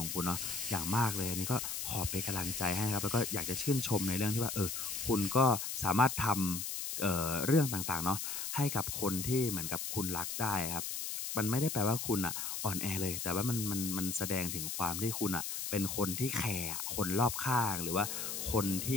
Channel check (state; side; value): noise; left; hiss, 4 dB below the sound